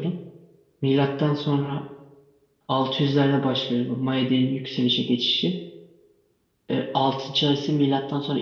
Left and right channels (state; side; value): identical; both; correlation 1.00